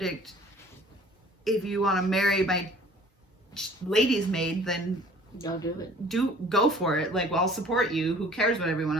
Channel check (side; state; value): both; normal; correlation 0.51